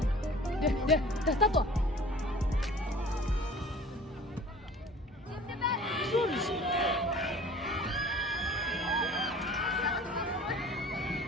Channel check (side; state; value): both; normal; correlation 0.46